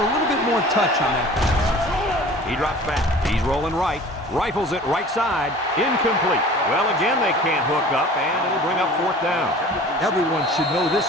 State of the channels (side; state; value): both; normal; correlation 0.44